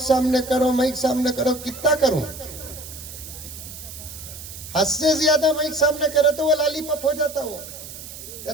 کرو, مائک سامنے کرو. کتنا کروں؟ حد سے زیادہ مائک سامنے کرے تو وہ لالی پاپ ہو جاتا ہو.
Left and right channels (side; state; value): right; noise; hiss, 13 dB below the sound